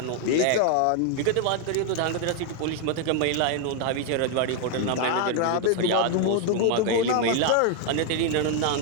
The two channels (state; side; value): different; both; correlation 0.00